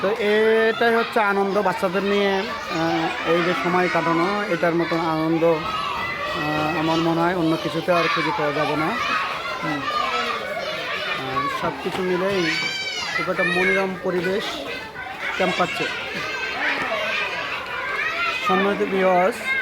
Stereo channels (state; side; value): identical; both; correlation 1.00